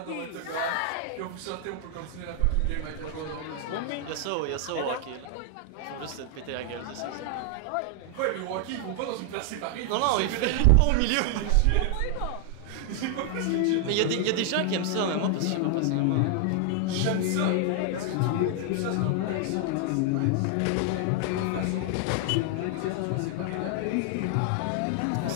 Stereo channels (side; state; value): both; different; correlation 0.00